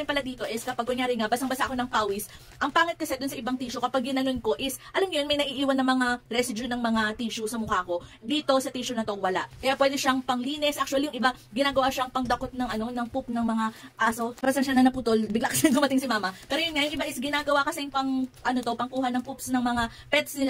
pala dito is kapag kunyari nga, basang-basa ako ng pawis, ang pangit kasi dun sa ibang tissue, kapag ginanon ko is, alam nyo yun, may naiiwan na mga residue ng mga tissue sa mukha ko. Dito sa tissue na to, wala. Kaya pwede siyang panglinis. Actually, yung iba, ginagawa siyang pangdakot ng, ng poop ng mga aso. Para saan siya na naputol, bigla kasi dumating si mama. Pero yun nga, yung iba is ginagawa kasi pangkuha ng poops ng mga pets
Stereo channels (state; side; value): identical; both; correlation 1.00